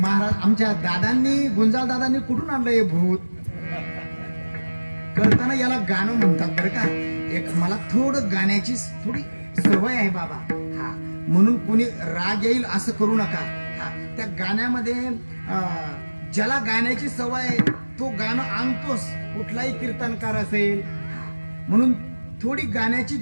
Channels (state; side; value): inverted; both; correlation -1.00